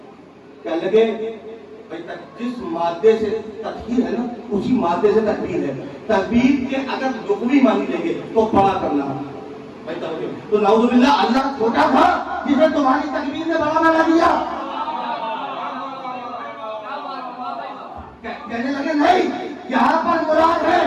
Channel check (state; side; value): identical; both; correlation 1.00